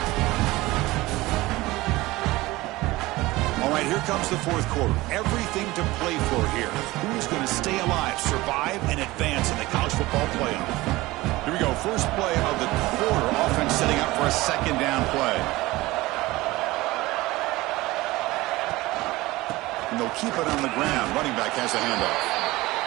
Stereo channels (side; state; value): left; quieter; 19.6 dB